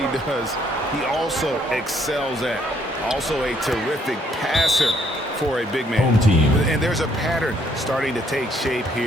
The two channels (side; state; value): both; normal; correlation 0.68